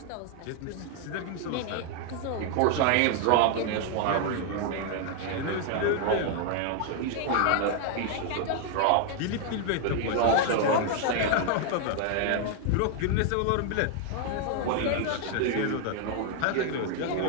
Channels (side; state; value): both; different; correlation 0.00